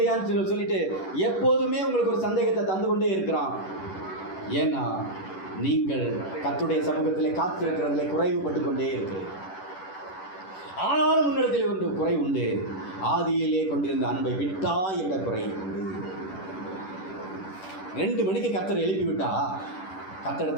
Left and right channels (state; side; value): late; right; 10 ms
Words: சொல்லிட்டு எப்போதுமே உங்களுக்கு ஒரு சந்தேகத்தை தந்து கொண்டே இருக்கிறான். ஏன்னா நீங்கள் கர்த்தருடைய சமூகத்தில் காத்திருக்கிறதுல குறைவுபட்டு கொண்டே இருக்கிறீர்கள். ஆனாலும் முன்னிடத்தில் ஒன்று குறை உண்டு, ஆதியிலே கொண்டிருந்த அன்பை விட்டா என்ற குறை உண்டு. 2 மணிக்கு கர்த்தர் எழுப்பி விட்டா